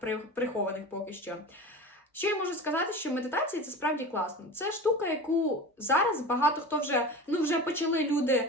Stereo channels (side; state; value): both; normal; correlation 0.32